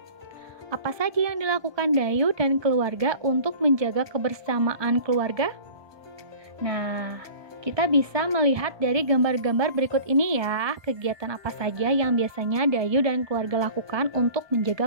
Apa saja yang dilakukan Dayu dan keluarga untuk menjaga kebersamaan keluarga? Nah, kita bisa melihat dari gambar-gambar berikut ini ya, kegiatan apa saja yang biasanya Dayu dan keluarga lakukan untuk menjaga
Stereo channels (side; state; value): left; late; 1.2 ms